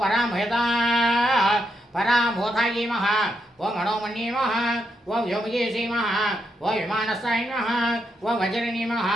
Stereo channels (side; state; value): both; normal; correlation 0.81